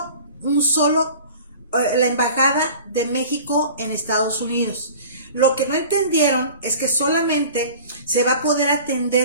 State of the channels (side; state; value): both; inverted; correlation -0.43